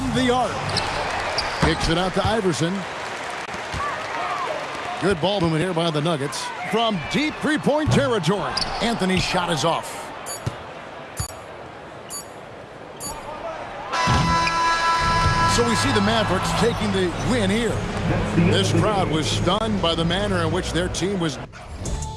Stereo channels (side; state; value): both; identical; correlation 1.00